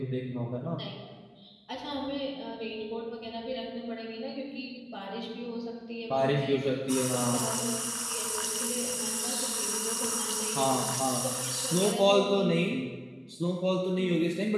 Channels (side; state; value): both; identical; correlation 1.00